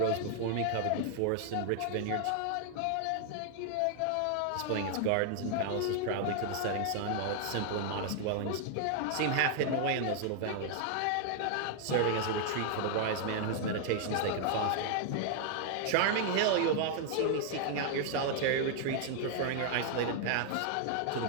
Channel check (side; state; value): both; different; correlation 0.00